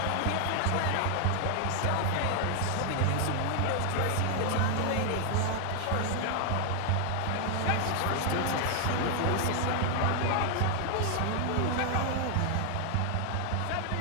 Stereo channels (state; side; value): different; both; correlation 0.00